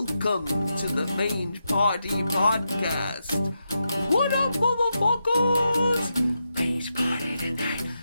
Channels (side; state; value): both; inverted; correlation -0.86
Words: to the Mange Party Podcast. What up, motherfuckers? Mange party tonight.